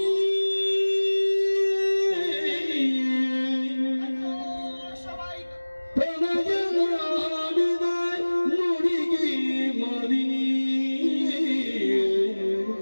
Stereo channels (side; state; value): both; inverted; correlation -1.00